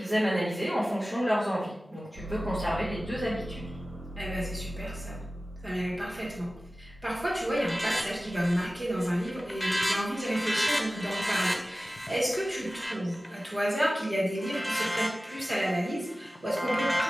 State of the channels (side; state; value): both; normal; correlation 0.96